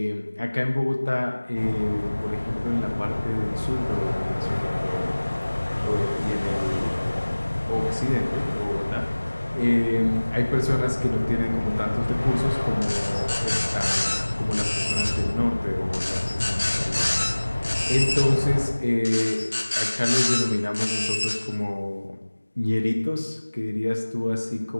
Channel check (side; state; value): both; inverted; correlation -1.00